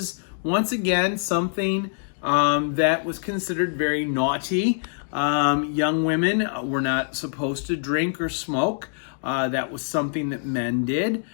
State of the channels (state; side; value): silent; right; digital silence